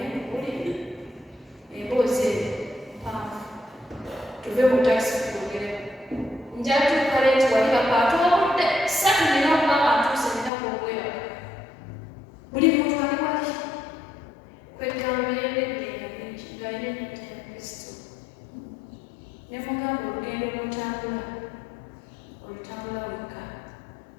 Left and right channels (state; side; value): drops out; right; at 10.5 s